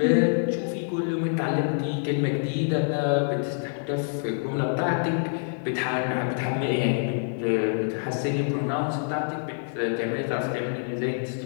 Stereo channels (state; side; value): silent; right; digital silence